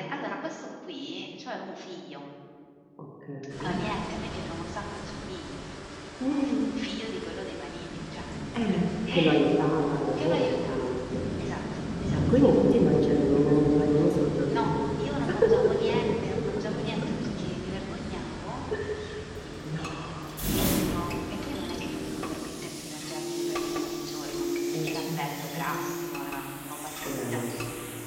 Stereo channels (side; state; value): both; identical; correlation 1.00